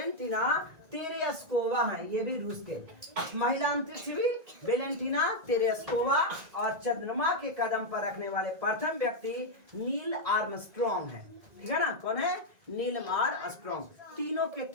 तेरेस्कोवा है, ये भी रूस के महिला अंतरिक्ष भी वेलेंटिना तेरेस्कोवा। और चंद्रमा के कदम पर रखने वाले प्रथम व्यक्ति नील आर्मस्ट्रॉन्ग है। ठीक है ना, कौन है? Neil Armstrong. तीनों के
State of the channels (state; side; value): late; left; 1.9 ms